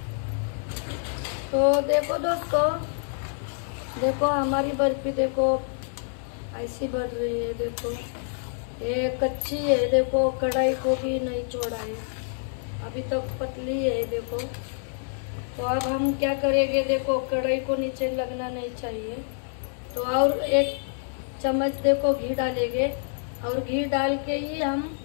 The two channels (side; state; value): right; silent; digital silence